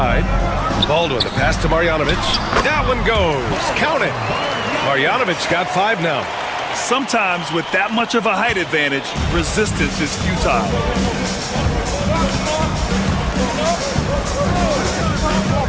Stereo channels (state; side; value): identical; both; correlation 1.00